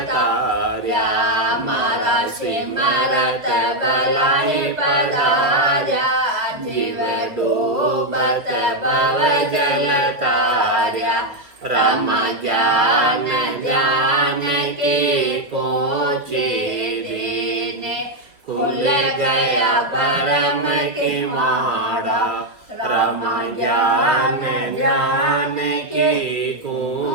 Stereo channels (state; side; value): late; left; 2.5 ms